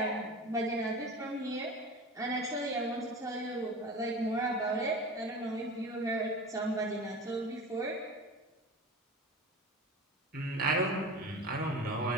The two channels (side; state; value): both; normal; correlation 0.33